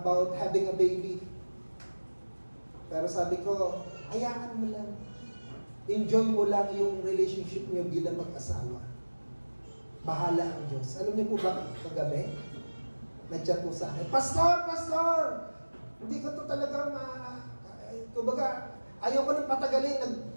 having a baby. Pero sabi ko, hayaan mo lang. Enjoy mo lang yung relationship niyo bilang mag-asawa. Bahala ang Diyos. Alam niyo po ba, kagabi, nag-chat po sa akin, Pastor! Hindi ko to talaga kumbaga, ayaw ko nang patagalin.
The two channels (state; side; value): inverted; both; correlation -1.00